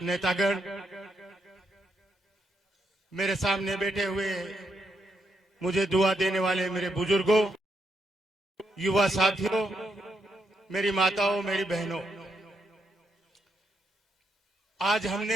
नेतागण, मेरे सामने बैठे हुए मुझे दुआ देने वाले मेरे बुजुर्गों, युवा साथियों, मेरी माताओं, मेरी बहनों, आज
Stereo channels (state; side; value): normal; both; correlation 0.80